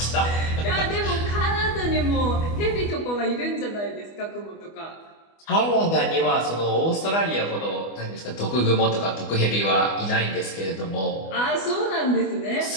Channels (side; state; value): right; late; 25 ms